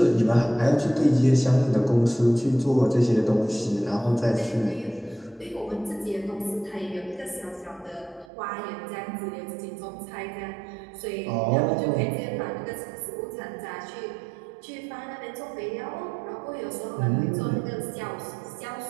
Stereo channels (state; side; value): drops out; left; at 8.3 s